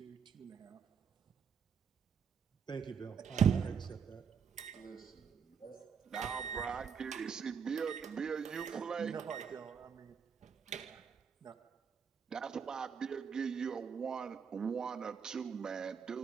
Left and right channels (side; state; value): left; quieter; 6.7 dB